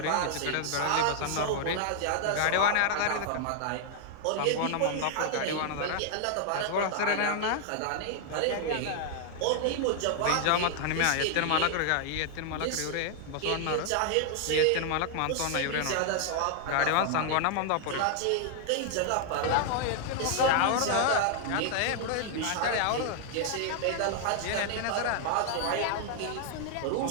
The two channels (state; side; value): different; both; correlation 0.00